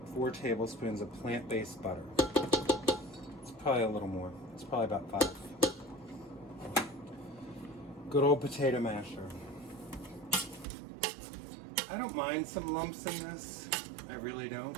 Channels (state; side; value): drops out; left; at 10.7 s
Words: 4 tablespoons of plant-based butter. It's probably a little more. It's probably about 5. Good old potato masher. I don't mind some lumps in this. I really don't.